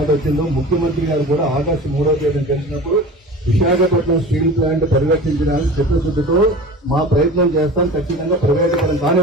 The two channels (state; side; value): normal; both; correlation 0.37